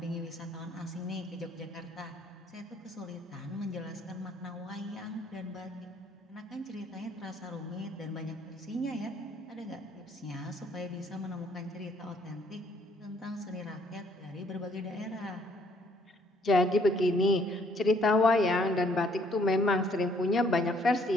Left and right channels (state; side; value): normal; both; correlation 0.64